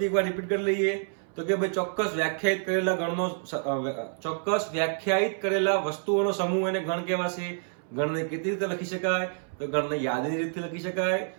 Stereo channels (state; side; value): silent; left; 59 dB below the other